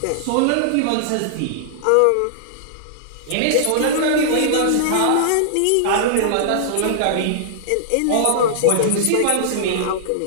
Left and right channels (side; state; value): both; different; correlation -0.01